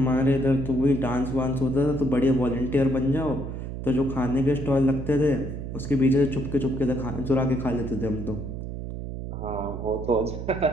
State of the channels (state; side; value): noise; right; hum, 7 dB below the sound